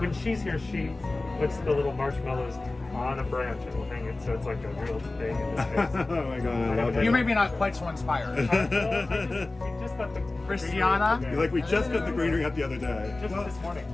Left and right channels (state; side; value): quieter; right; 3.1 dB